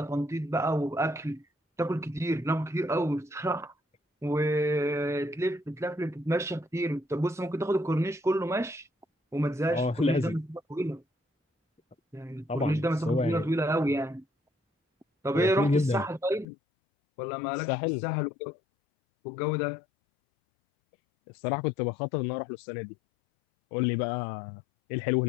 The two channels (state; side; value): drops out; right; at 16.4 s